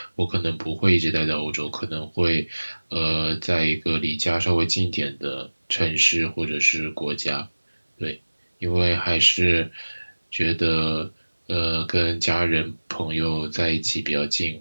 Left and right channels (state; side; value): inverted; both; correlation -1.00